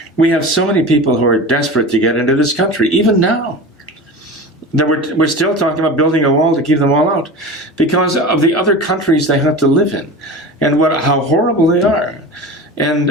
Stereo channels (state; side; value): normal; both; correlation 0.32